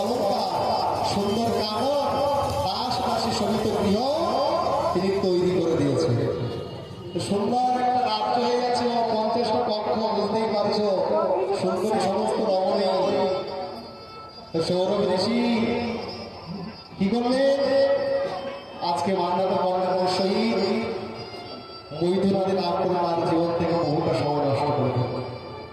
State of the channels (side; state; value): both; identical; correlation 1.00